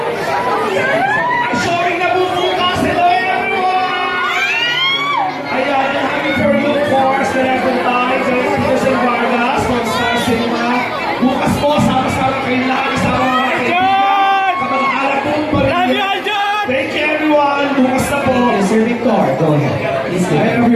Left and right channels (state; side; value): identical; both; correlation 1.00